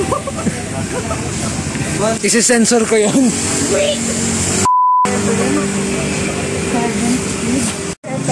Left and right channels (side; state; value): both; identical; correlation 1.00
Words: Isi-sensor ko yun.